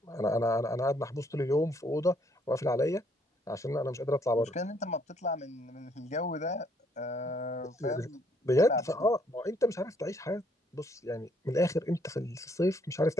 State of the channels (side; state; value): both; normal; correlation 0.68